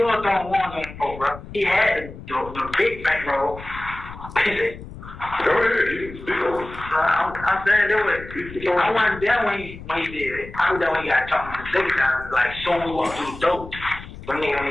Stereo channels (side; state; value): left; noise; rumble, 14 dB below the sound